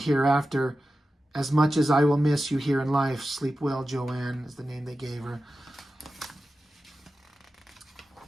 as much as I will miss you here in life. Sleep well, Joanne is the name they gave her.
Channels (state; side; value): normal; both; correlation 0.93